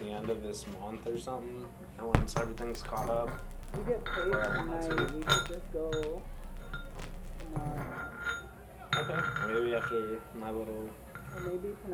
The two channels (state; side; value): identical; both; correlation 1.00